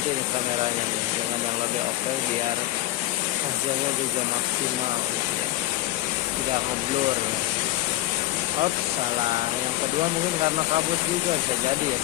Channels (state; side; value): quieter; right; 16.2 dB